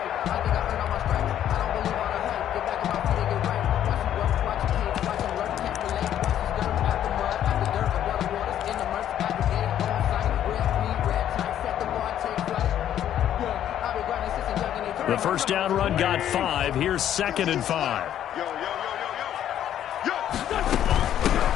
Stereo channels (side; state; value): right; quieter; 10.8 dB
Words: The first down run got 5. Here's 2nd and 5.